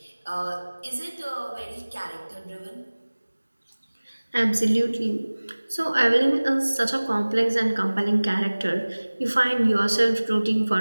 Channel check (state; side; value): inverted; both; correlation -1.00